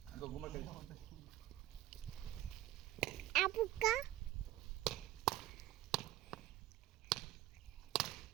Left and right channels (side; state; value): left; quieter; 14.3 dB